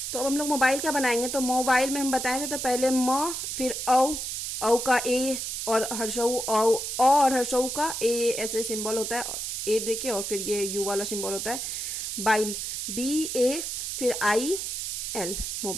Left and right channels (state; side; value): noise; right; hiss, 4 dB below the sound